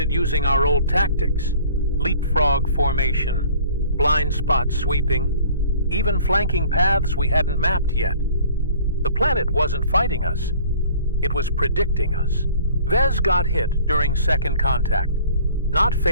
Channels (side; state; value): both; inverted; correlation -0.50